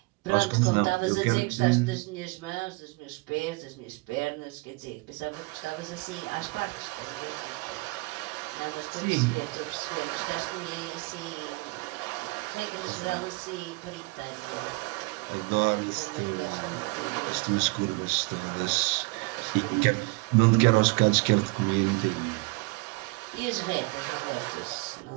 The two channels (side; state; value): left; quieter; 27.3 dB